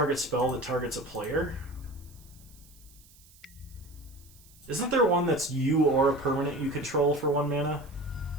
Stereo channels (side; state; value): right; noise; hiss, 25 dB below the sound